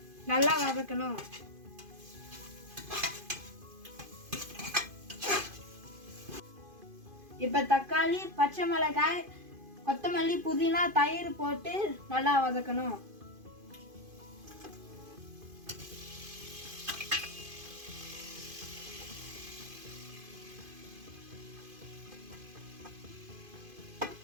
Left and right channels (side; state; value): left; late; 2.5 ms